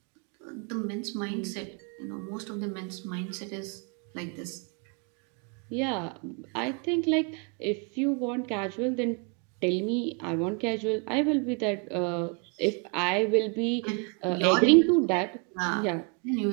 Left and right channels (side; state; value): left; quieter; 35.6 dB